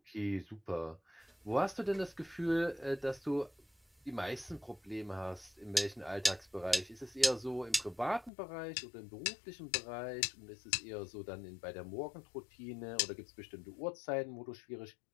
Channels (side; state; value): right; drops out; at 8.3 s